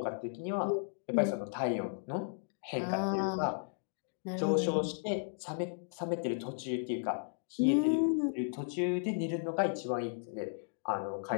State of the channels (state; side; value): silent; right; digital silence